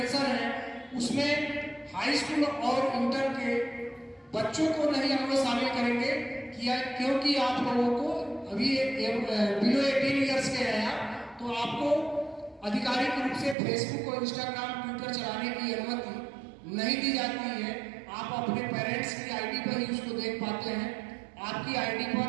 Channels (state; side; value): drops out; left; at 13.6 s